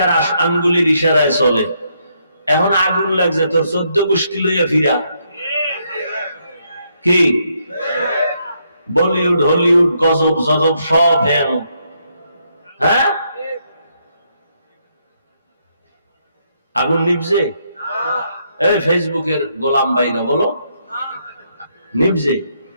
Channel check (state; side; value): inverted; both; correlation -0.75